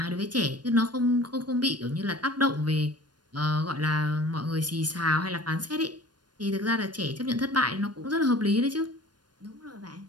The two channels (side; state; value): left; late; 0.70 ms